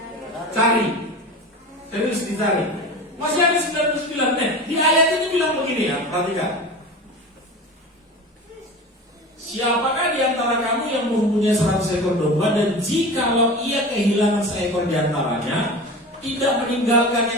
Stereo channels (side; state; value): both; normal; correlation 0.32